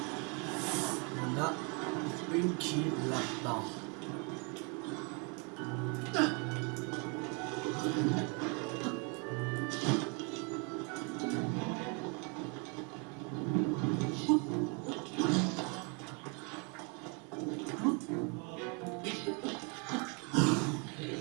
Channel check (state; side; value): quieter; left; 34.0 dB